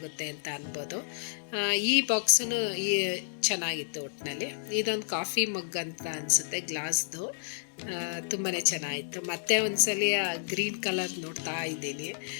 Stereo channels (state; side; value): silent; right; digital silence